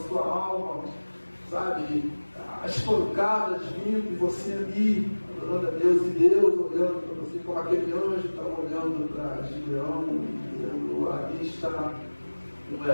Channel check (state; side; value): inverted; both; correlation -1.00